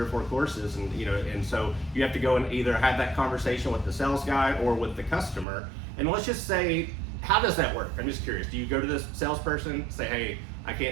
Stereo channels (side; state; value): left; drops out; at 5.5 s